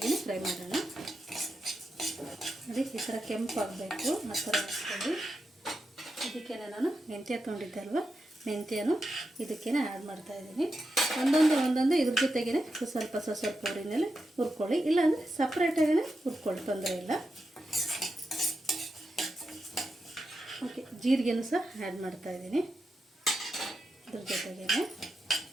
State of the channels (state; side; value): normal; both; correlation 0.87